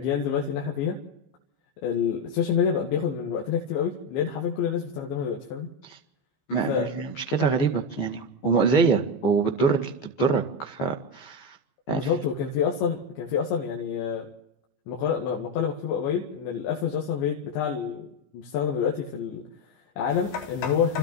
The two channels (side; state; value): right; late; 15 ms